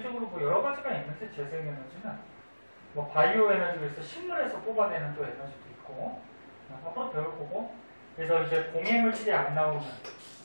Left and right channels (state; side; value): inverted; both; correlation -1.00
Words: 뭐 여러 가지가 있는데 재생 에너지는 뭐 바이오 에너지에서 식물에서 뽑아내는 또 에너지도 있고 앞으로 배울 거고. 그래서 이제 공해물질이 안 나오는